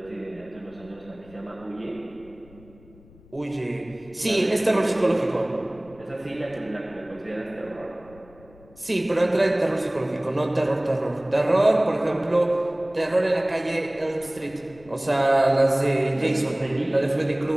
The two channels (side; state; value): left; noise; rumble, 24 dB below the sound